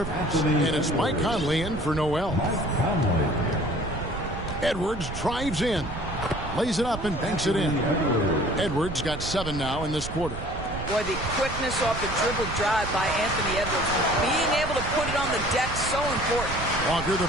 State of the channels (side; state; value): right; noise; rumble, 8 dB below the sound